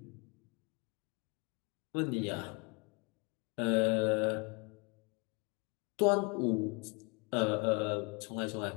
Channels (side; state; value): right; quieter; 31.7 dB